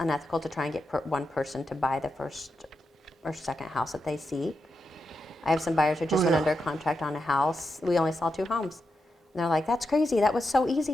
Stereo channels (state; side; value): normal; both; correlation 0.87